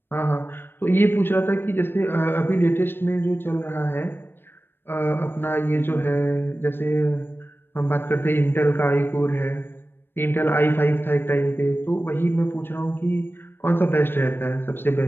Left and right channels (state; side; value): late; right; 0.10 ms